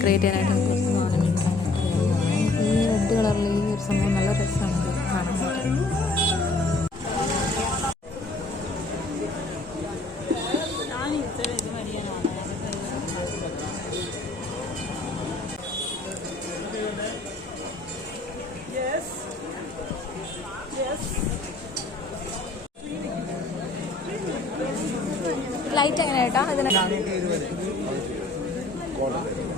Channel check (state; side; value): quieter; right; 3.2 dB